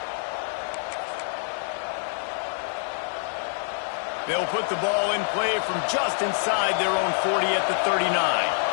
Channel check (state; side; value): silent; right; digital silence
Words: They'll put the ball in play from just inside their own 40 at the 39.